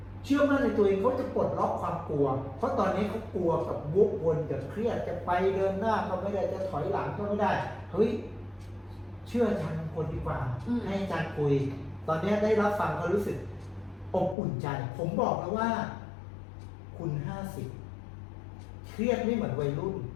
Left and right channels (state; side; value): drops out; right; at 14.4 s